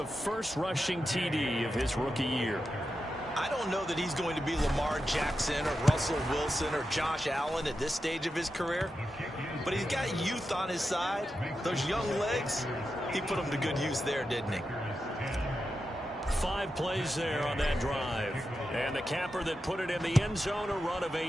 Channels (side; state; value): both; normal; correlation 0.89